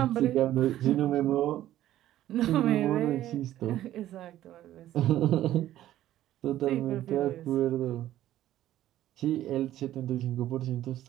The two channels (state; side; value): quieter; left; 13.3 dB